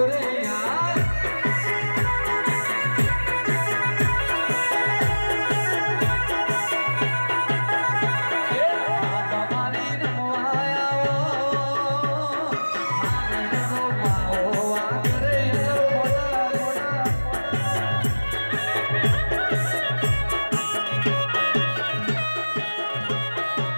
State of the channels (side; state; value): both; inverted; correlation -1.00